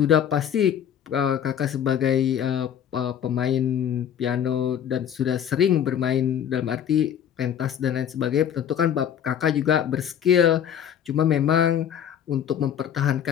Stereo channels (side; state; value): right; quieter; 9.2 dB